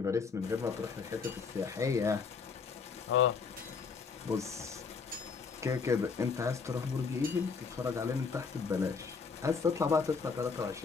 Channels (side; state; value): right; quieter; 5.2 dB